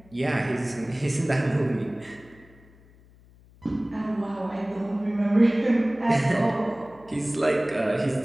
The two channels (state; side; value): noise; left; hum, 26 dB below the sound